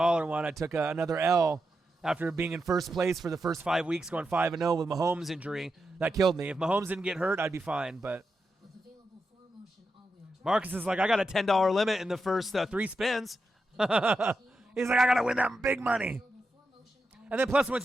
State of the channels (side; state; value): both; normal; correlation 0.87